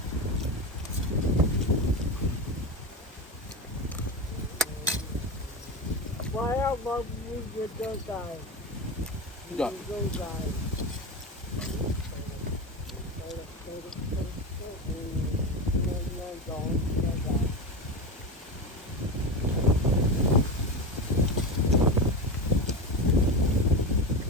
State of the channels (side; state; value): both; normal; correlation 0.20